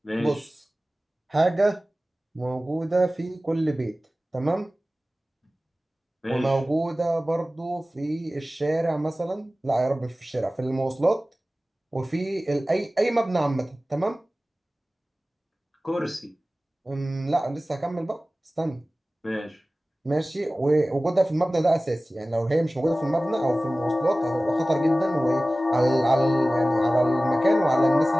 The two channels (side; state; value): both; normal; correlation 0.97